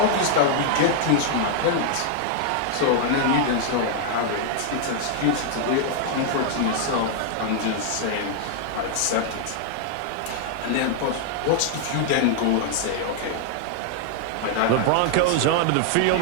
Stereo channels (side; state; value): both; different; correlation 0.00